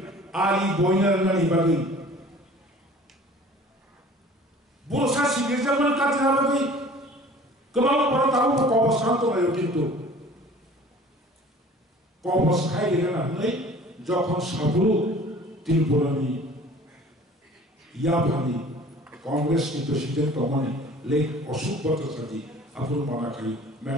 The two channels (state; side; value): normal; both; correlation 0.47